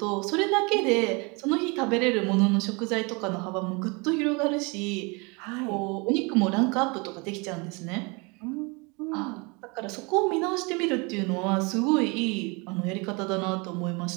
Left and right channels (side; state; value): left; quieter; 29.3 dB